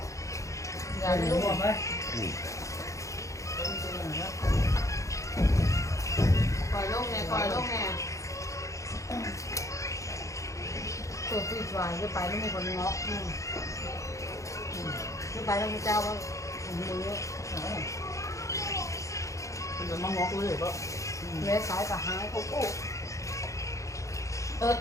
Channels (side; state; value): right; late; 0.15 ms